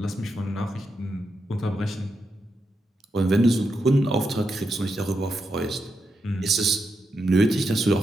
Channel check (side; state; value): both; normal; correlation 0.84